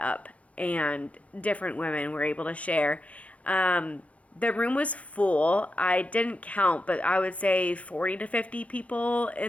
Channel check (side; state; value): right; late; 0.065 ms